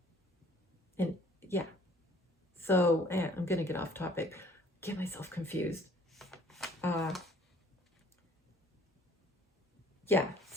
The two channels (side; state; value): both; normal; correlation 0.56